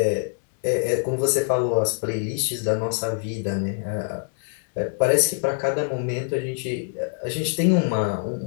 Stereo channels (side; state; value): right; silent; digital silence